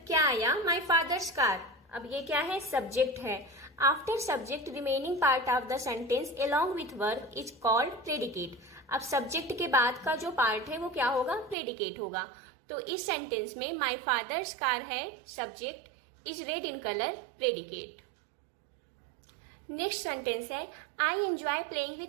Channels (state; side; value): drops out; left; at 11.6 s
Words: क्या आया? माई फादर्स कार. अब ये क्या है? सब्जेक्ट है. After subject remaining part of the sentence along with verb is called predicate. अब सब्जेक्ट के बाद का जो पार्ट है वो क्या होगा? प्रेडिकेट होगा. तो इस सेंटेंस में माई फादर्स कार है subject, is red in colour predicate. Next sentence है I enjoy playing